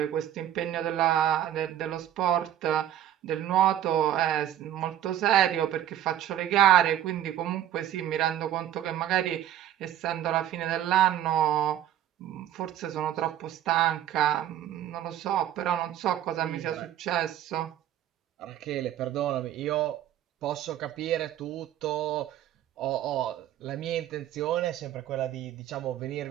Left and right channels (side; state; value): left; quieter; 11.6 dB